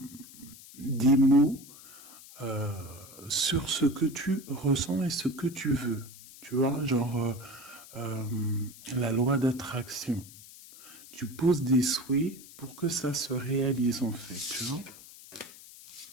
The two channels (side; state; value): left; noise; hiss, 18 dB below the sound